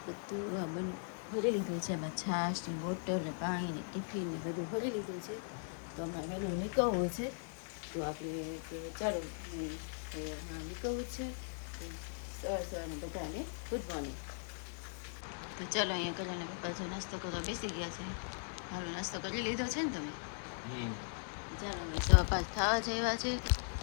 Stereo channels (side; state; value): right; silent; 52 dB below the other